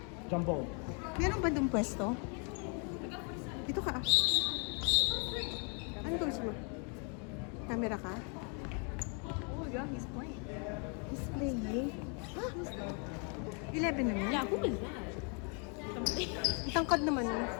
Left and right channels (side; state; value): right; quieter; 37.6 dB